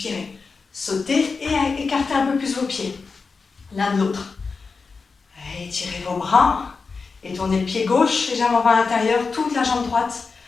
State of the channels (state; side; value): quieter; right; 4.7 dB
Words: Sautez et écartez un peu plus vos pieds. L'un de l'autre. Étirez vos bras et tournez le pied gauche légèrement vers l'intérieur, toute la jambe droite